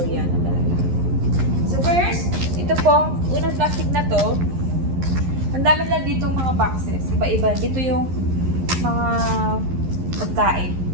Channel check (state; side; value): late; left; 11 ms